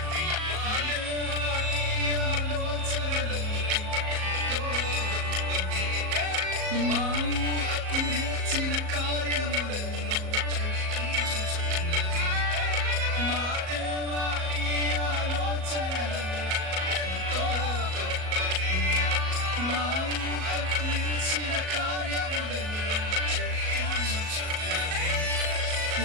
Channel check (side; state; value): left; late; 38 ms